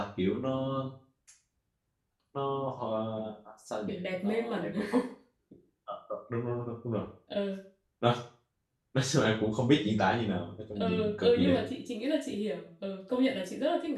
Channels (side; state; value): both; identical; correlation 1.00